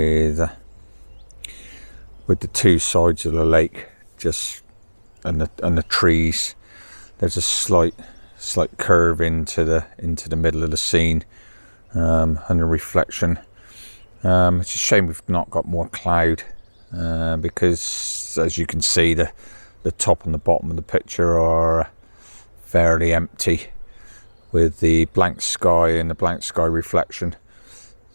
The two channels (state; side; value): inverted; both; correlation -1.00